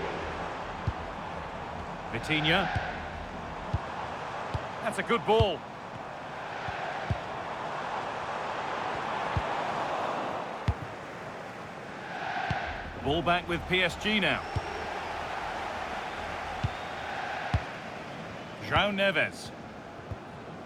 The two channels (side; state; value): both; identical; correlation 1.00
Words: Vitinha. That's a good ball. Ball back with PSG now. João Neves.